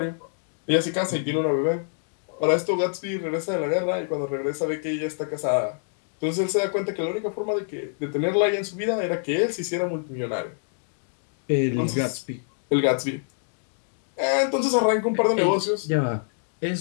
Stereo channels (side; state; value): right; silent; digital silence